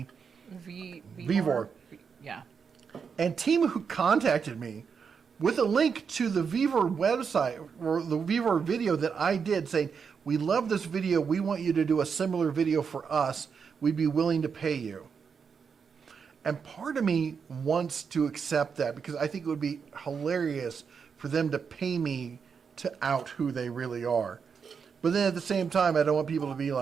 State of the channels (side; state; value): left; quieter; 6.2 dB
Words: Vivor. Yeah. And Temu contacted me with a link to the Vivor website or the Vivor video that I did saying, we love this video. We want you to do a similar video for us. We'd be willing to pay you. And part of me wants to accept that because I think it would be hilarious for them to pay me to out who they really are. But then at the same time, I don't want people to be